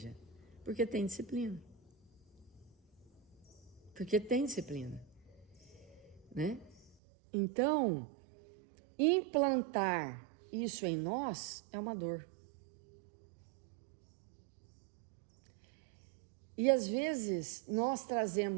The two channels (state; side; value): drops out; left; at 7.0 s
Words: porque tem disciplina. Porque tem disciplina, né? Então, implantar isso em nós é uma dor. E às vezes nós